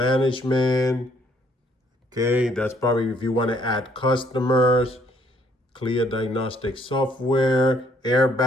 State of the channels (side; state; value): both; normal; correlation 0.66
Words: Okay, that's probably if you want to add customers. Clear diagnostic software,